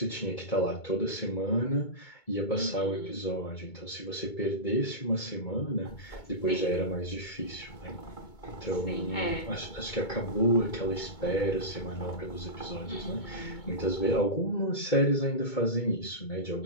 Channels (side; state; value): right; late; 2.2 ms